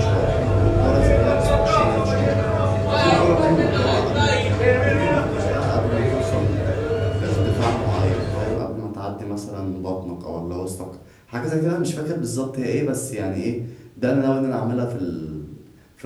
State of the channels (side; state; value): both; identical; correlation 1.00